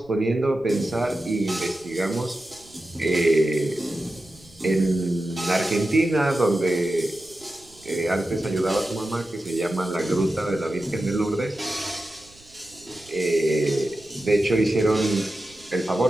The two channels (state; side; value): noise; right; rumble, 26 dB below the sound